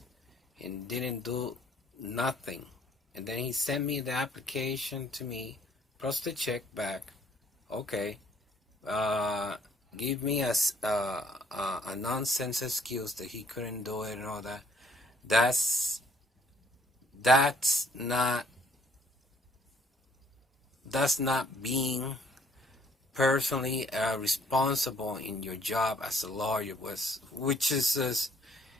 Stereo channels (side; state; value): both; normal; correlation 0.63